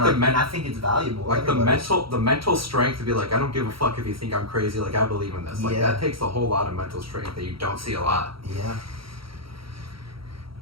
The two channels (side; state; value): left; late; 0.74 ms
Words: like, the and I think it's valuable. like the Everybody's- mental strength to be like, I don't give a fuck if you think I'm crazy. Like I believe in this. Like Yeah. that takes a whole lot of mental strength that you don't see a lot. Yeah.